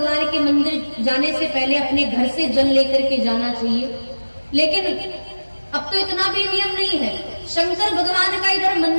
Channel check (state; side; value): inverted; both; correlation -1.00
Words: के मंदिर जाने से पहले अपने घर से जल लेकर के जाना चाहिए, लेकिन अब तो इतना भी नियम नहीं है। शंकर भगवान का इधर